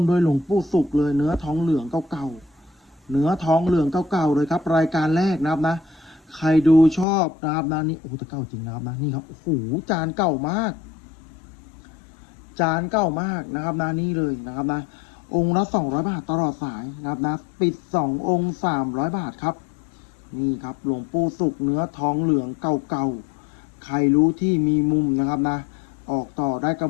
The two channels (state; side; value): drops out; right; at 7.1 s